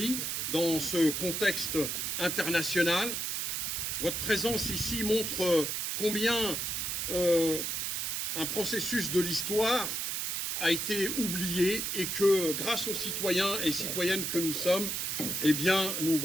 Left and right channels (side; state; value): right; noise; hiss, 1 dB below the sound